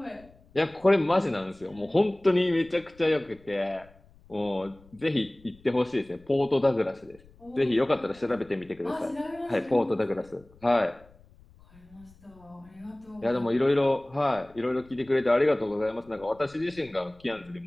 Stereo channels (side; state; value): left; noise; rumble, 26 dB below the sound